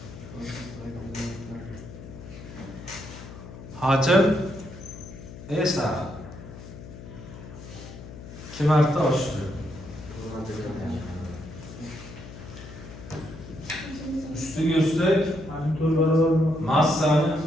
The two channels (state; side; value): noise; left; hum, 14 dB below the sound